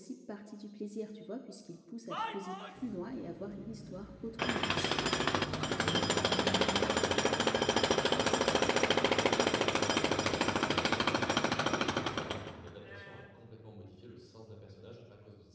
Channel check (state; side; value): identical; both; correlation 1.00